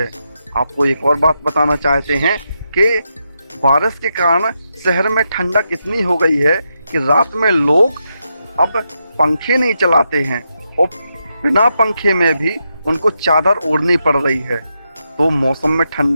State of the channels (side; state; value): both; inverted; correlation -0.84